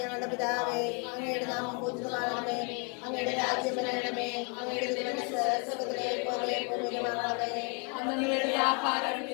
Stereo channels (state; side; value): quieter; right; 35.8 dB